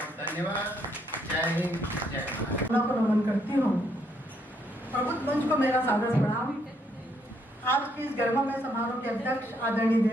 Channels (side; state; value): both; normal; correlation 0.72